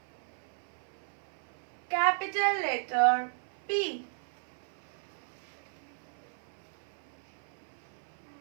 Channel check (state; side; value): silent; left; 54 dB below the other